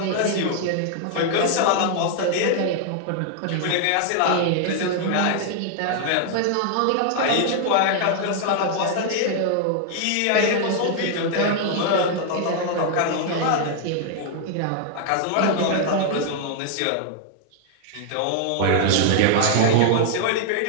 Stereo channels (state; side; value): different; both; correlation 0.00